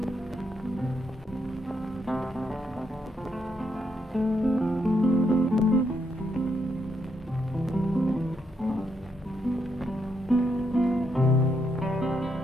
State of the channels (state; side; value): normal; both; correlation 0.78